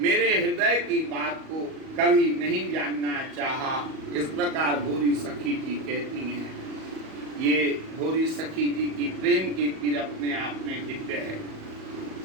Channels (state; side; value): late; left; 38 ms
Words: हृदय की बात को कभी नहीं जानना चाहा। इस प्रकार भोरी सखी जी कहती हैं। ये भोरी सखी जी की प्रेम की पीर अपने आप में दिव्य है।